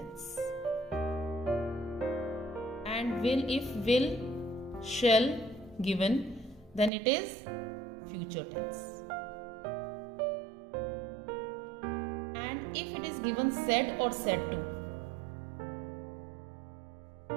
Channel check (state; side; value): drops out; left; at 6.9 s